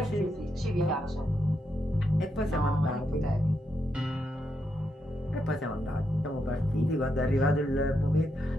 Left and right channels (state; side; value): normal; both; correlation 0.81